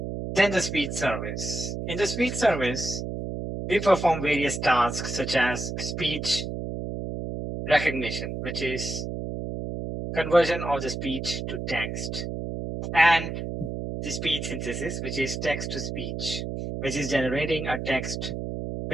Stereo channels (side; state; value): right; noise; hum, 5 dB below the sound